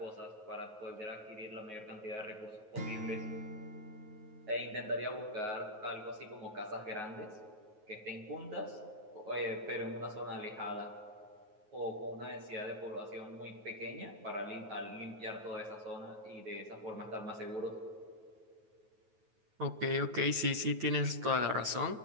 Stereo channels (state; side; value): late; left; 9.3 ms